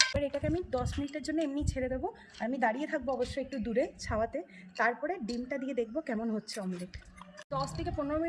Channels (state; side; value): identical; both; correlation 1.00